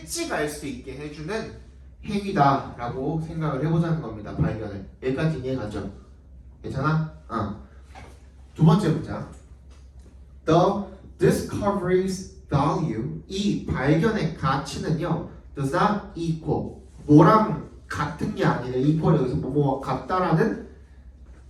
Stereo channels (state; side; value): identical; both; correlation 1.00